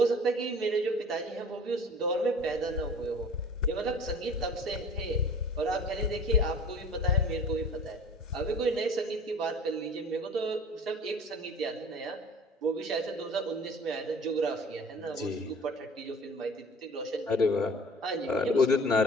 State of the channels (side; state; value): both; normal; correlation 0.45